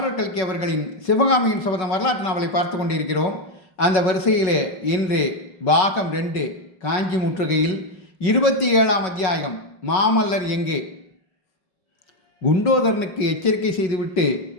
கல்கி அவர்களின் சிவகாமியின் சபதம் வரலாற்று நாவலை பார்த்து கொண்டிருக்கிறோம். அந்த வரிசையிலே இன்று பாகம் 2 காஞ்சி முற்றுகையில் 27ஆம் அத்தியாயம் மாமல்லர் எங்கே. குண்டோதரனுக்கு எச்சரிக்கை செய்துவிட்டு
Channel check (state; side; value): late; right; 5.4 ms